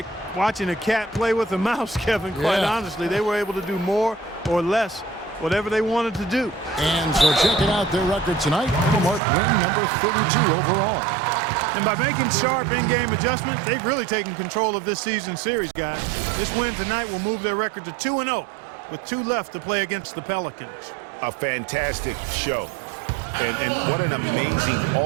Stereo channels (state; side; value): drops out; left; at 9.2 s